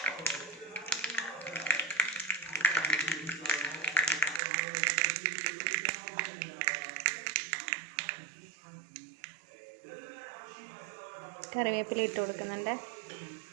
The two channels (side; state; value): left; drops out; at 4.4 s